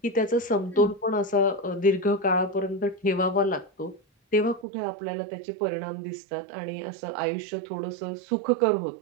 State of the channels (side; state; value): left; drops out; at 4.7 s